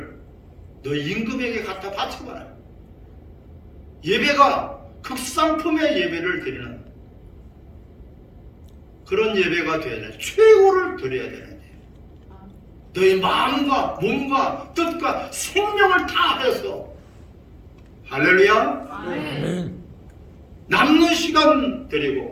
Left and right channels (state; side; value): identical; both; correlation 1.00